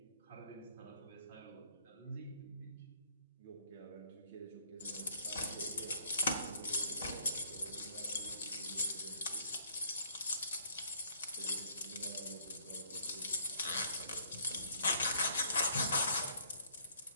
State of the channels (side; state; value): both; inverted; correlation -0.61